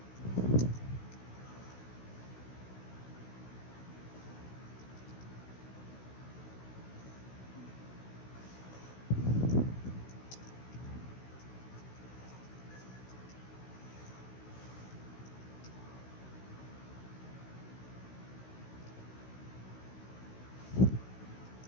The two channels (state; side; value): late; right; 16 ms